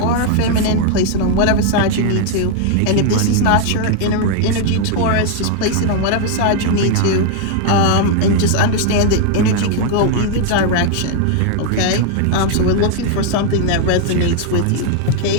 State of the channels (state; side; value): different; both; correlation 0.00